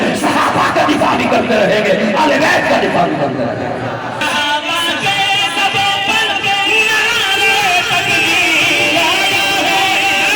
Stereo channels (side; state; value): both; identical; correlation 1.00